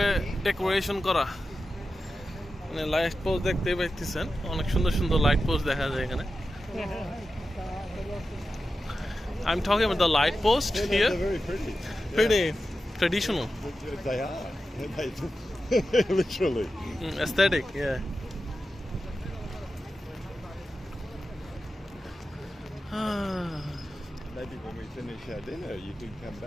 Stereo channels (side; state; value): both; normal; correlation 0.92